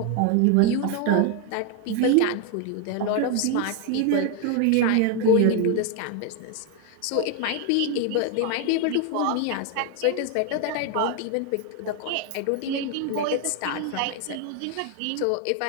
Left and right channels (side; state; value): both; different; correlation 0.01